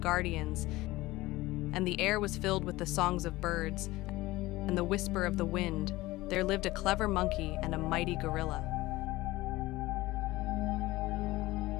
and the air was filled with the songs of birds and the whisper of the wind, there lived a clever monkey and a mighty gorilla.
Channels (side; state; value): right; quieter; 18.8 dB